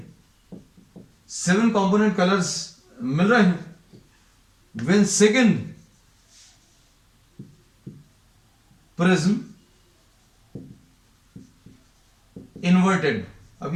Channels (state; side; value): identical; both; correlation 1.00